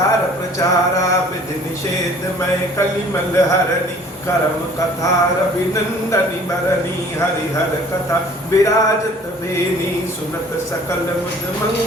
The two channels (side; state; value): both; normal; correlation 0.52